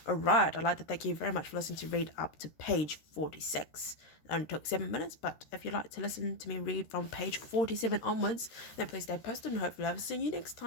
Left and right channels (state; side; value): late; right; 13 ms